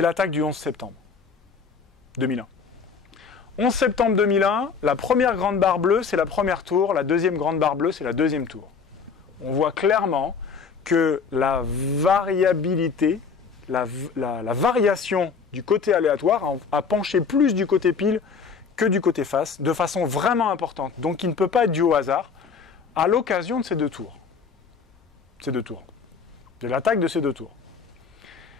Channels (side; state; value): right; quieter; 5.7 dB